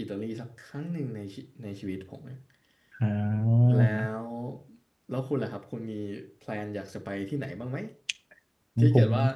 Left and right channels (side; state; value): both; identical; correlation 1.00